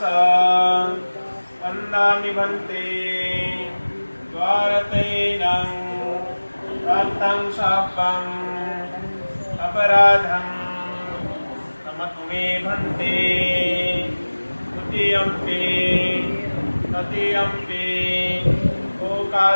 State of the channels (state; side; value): inverted; both; correlation -1.00